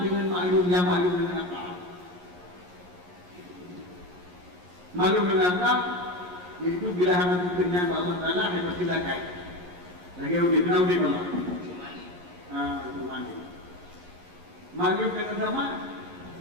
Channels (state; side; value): late; left; 11 ms